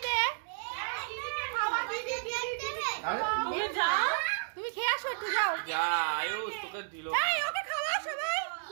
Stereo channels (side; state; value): left; silent; digital silence